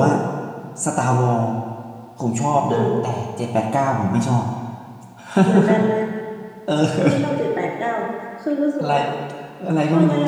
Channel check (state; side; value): identical; both; correlation 1.00